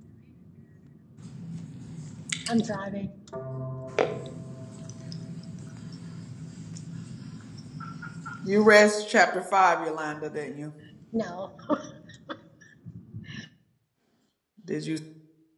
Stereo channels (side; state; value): both; identical; correlation 1.00